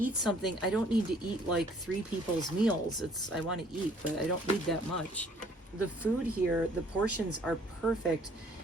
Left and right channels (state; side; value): normal; both; correlation 0.59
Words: something. I don't need to eat like 3 people's meals. I want to eat, but I don't need that much. The food here, the portions are perfect.